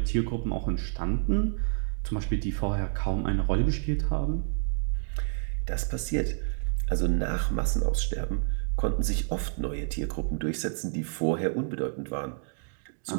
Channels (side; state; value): left; silent; digital silence